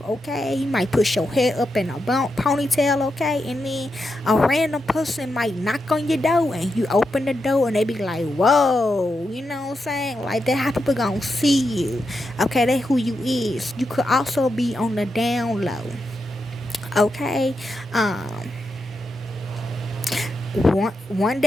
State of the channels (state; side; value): normal; both; correlation 0.86